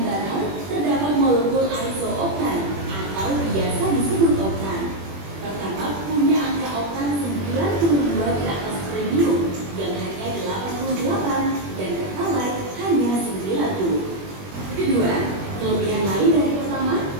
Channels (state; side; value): late; left; 21 ms